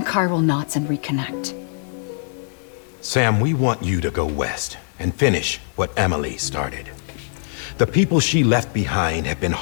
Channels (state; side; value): silent; right; 55 dB below the other